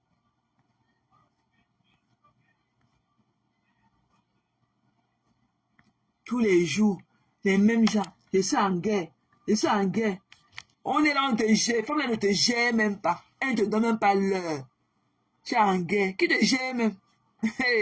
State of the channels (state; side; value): identical; both; correlation 1.00